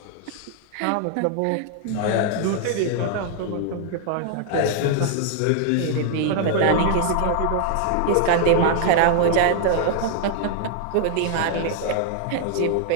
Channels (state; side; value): different; both; correlation 0.00